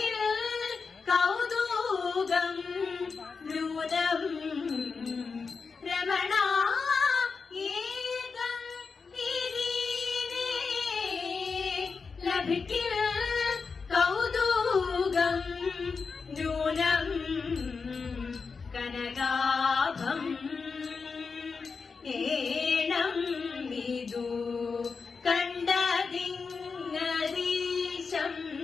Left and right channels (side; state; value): right; quieter; 5.0 dB